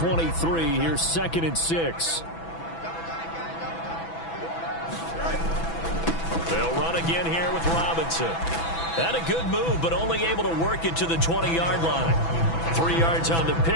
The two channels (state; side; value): late; right; 6.0 ms